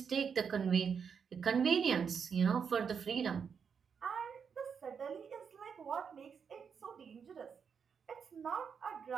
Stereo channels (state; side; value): quieter; left; 6.6 dB